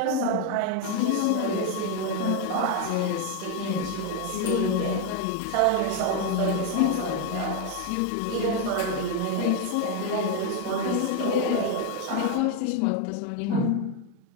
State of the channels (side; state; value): both; different; correlation 0.01